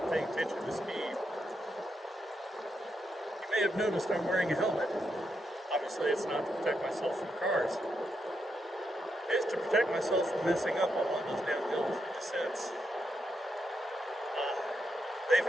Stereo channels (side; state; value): both; normal; correlation 0.82